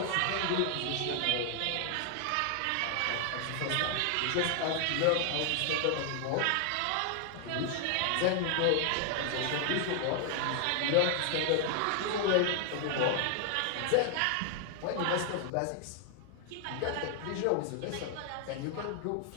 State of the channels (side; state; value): both; different; correlation 0.00